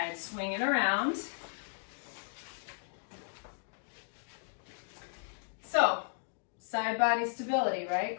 Swing it around. So, side body stability,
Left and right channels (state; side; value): silent; right; digital silence